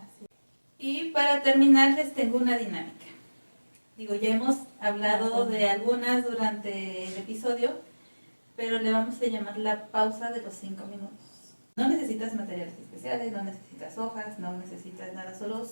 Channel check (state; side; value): inverted; both; correlation -1.00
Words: Así. Y para terminar les tengo una dinámica. Digo, ya hemos hablado de algunas durante el episodio, pero le vamos a llamar la pausa de los 5 minutos. No necesitas materiales especiales, no necesitas hojas, no necesitas nada, solo